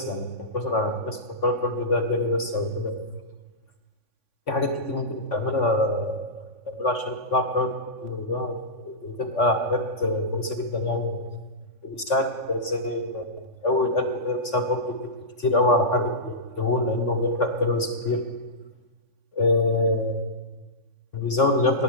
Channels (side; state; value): right; late; 3.5 ms